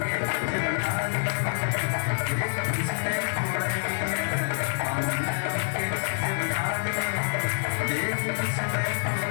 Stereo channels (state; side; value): silent; right; digital silence